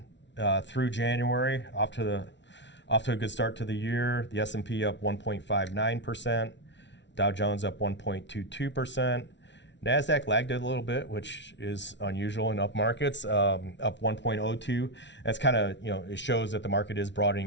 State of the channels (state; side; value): late; right; 0.52 ms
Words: through January. Off to a good start to the year. The S&P up 1.59%. Dow Jones up 1.22%. NASDAQ lagged it a little bit, which is unusual in up markets, up 1.02. That's kind of, it shows that the market is